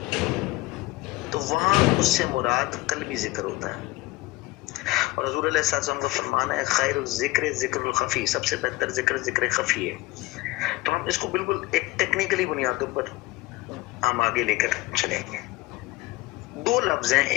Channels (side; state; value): right; quieter; 19.9 dB